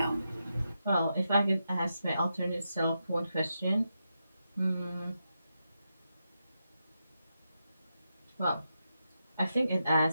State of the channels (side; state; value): both; inverted; correlation -0.87